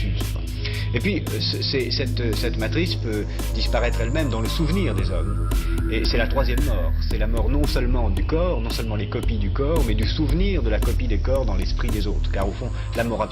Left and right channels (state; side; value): identical; both; correlation 1.00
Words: Et puis, cette matrice peut disparaître elle-même dans le souvenir des hommes. Et c'est la troisième mort. C'est la mort non seulement du corps, non seulement les copies du corps, mais du souvenir de la copie des corps dans l'esprit des autres. Car au fond, la mort